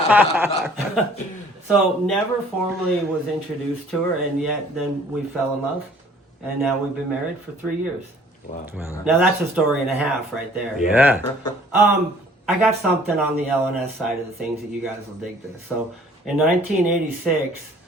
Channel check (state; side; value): normal; both; correlation 0.55